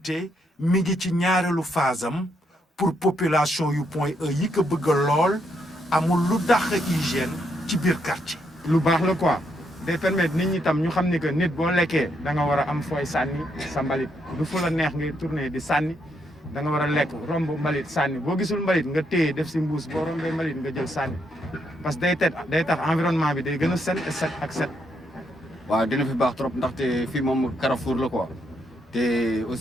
mi ngi ci ñaareelu phase am pour population yu Point E yi ko bëgg lool amul lu dàq hygiène ci biir quartier. lu baax la quoi day permettre nit ñi tam ñu xam ni que nit boo lekkee da nga war a am fooy sànni sa mbalit du fu la neex ngay tourner di sànni da nga war a lekk romb mbalit sànni boo gisul mbalit nga téye def si mbuus boo rombee mbalit nga jël sànni parce que day tax environnement bi day gën a set ak set. waaw dina fi baax trop ndaxte fii moom carrefour la quoi te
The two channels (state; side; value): normal; both; correlation 0.77